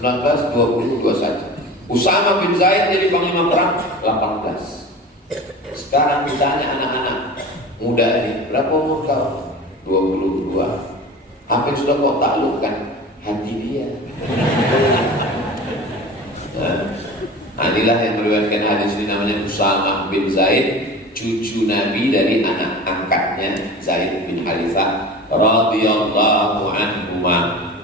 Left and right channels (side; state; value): both; normal; correlation 0.36